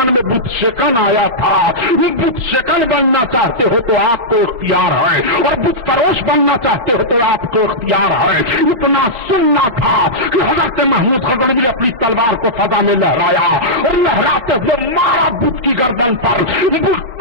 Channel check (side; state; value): left; late; 4.1 ms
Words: میں بت شکن آیا تھا. یہ بت شکن بننا چاہتے ہو تو آپ کو اختیار ہے, اور بت فروش بننا چاہتے ہو تو آپ کو اختیار ہے. اتنا سننا تھا کہ حضرت محمود غزنوی اپنی تلوار کو فضا میں لہرایا اور لہراتے ہوئے مارا بت کی گردن پر, بت